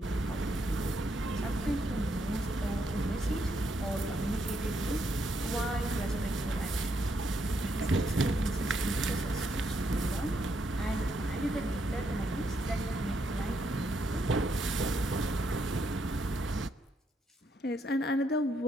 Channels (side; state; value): both; normal; correlation 0.76